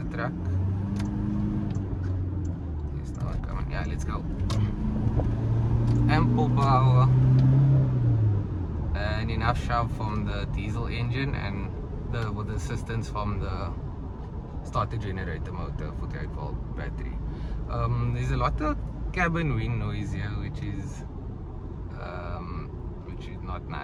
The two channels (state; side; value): identical; both; correlation 1.00